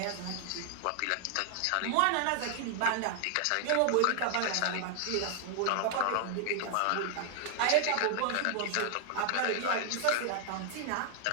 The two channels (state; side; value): different; both; correlation 0.00